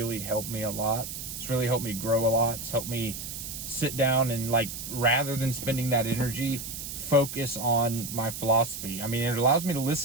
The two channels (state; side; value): noise; right; hiss, 8 dB below the sound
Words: helped me a lot. It's really helped me grow a lot. It's helped me sit down and, rather than spending that energy, focus on my philosophy. I mean, it allows me to